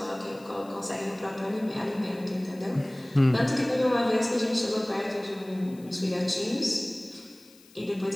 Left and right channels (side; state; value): left; noise; hiss, 26 dB below the sound